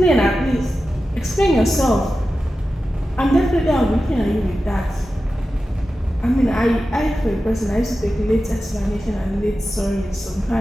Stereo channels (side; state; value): both; normal; correlation 0.93